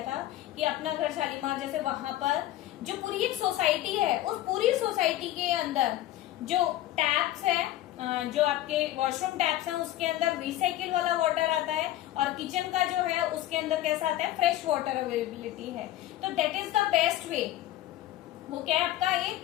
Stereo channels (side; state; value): right; quieter; 14.4 dB